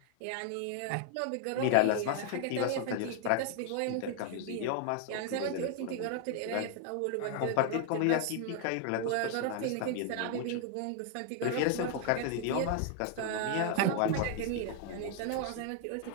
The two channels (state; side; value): different; both; correlation 0.00